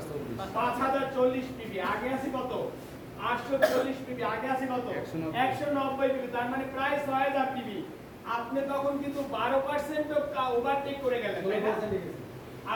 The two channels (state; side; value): identical; both; correlation 1.00